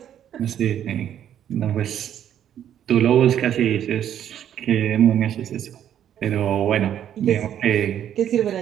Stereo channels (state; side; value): quieter; left; 10.2 dB